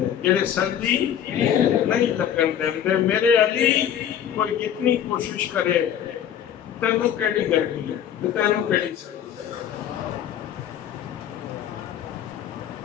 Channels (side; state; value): right; quieter; 9.6 dB